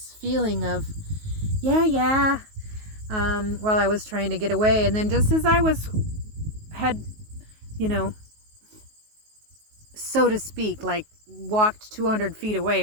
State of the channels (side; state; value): left; late; 19 ms